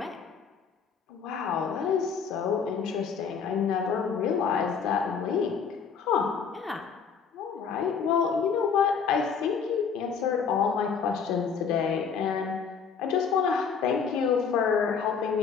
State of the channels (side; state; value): right; quieter; 6.3 dB